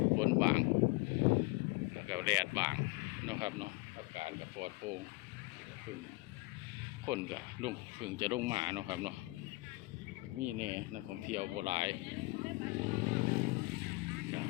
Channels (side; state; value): right; quieter; 23.8 dB